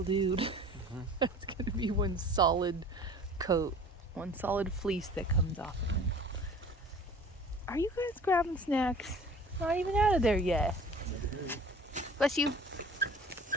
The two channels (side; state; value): both; normal; correlation 0.46